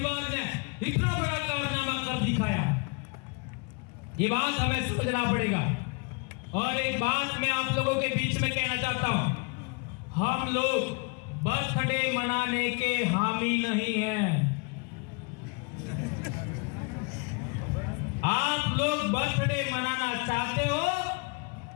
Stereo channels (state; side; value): quieter; right; 33.8 dB